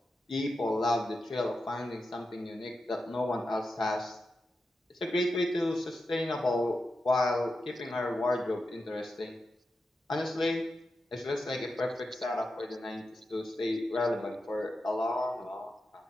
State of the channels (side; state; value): both; normal; correlation 0.89